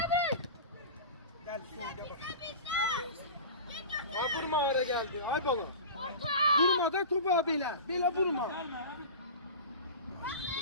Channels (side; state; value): both; inverted; correlation -0.33